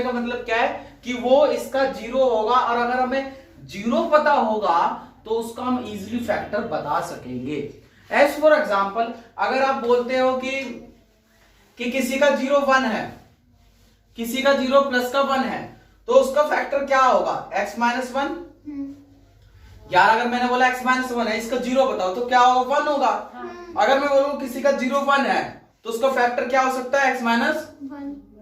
का मतलब क्या है कि वो इसका 0 होगा, और अगर हमें 0 पता होगा तो उसका हम इजीली फैक्टर बता सकेंगे। एज फॉर एग्जांपल, अगर आप बोलते हो कि किसी का 0 1 है, किसी का 0 प्लस का 1 है, तो उसका फैक्टर क्या होगा? x minus 1। यार अगर मैंने बोला x माइनस 1 है, इसका 0 बताओ तो क्या होगा? 1 होगा। अगर मैं बोलूं किसी का 0 1 है तो उसका फैक्टर क्या हो सकता है? x minus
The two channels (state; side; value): identical; both; correlation 1.00